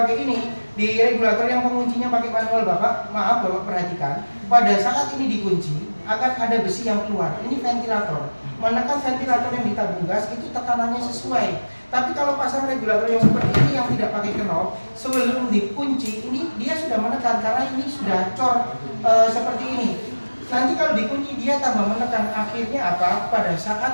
ini? Di regulator yang penguncinya pakai manual Bapak, maaf Bapak perhatikan, pada saat ini dikunci akan ada besi yang keluar. Ini ventilator. Menekan ventilator yang di tabung gas itu tekanannya sesuai. Tapi kalau pasang regulator yang seperti ini yang tidak pakai knob, sebelum dikunci ini dia sudah menekan karena ini sudah cor seperti ini. Nanti kalau dikunci dia tambah menekan, akhirnya apa? Pada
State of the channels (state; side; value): inverted; both; correlation -1.00